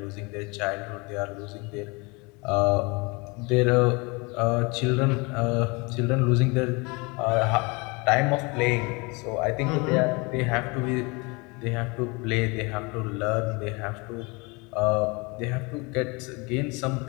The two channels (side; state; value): right; quieter; 27.9 dB